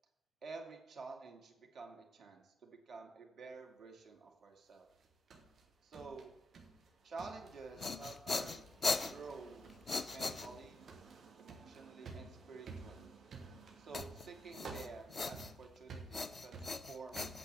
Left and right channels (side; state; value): both; normal; correlation 0.85